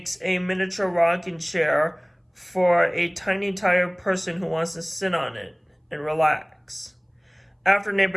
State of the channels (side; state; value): both; identical; correlation 1.00